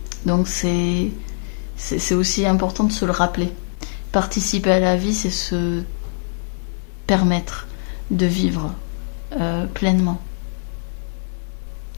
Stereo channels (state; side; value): silent; right; digital silence